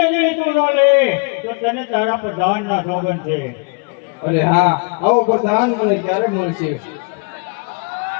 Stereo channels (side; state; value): right; quieter; 35.0 dB